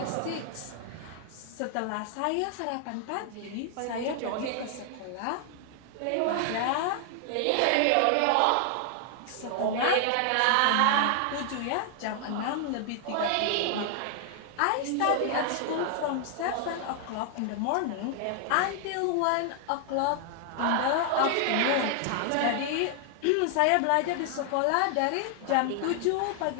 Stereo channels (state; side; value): different; both; correlation 0.00